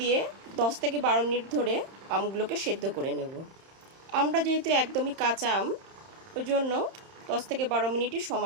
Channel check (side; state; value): left; late; 31 ms